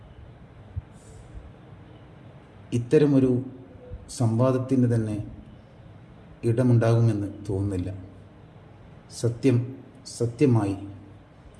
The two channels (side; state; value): both; identical; correlation 1.00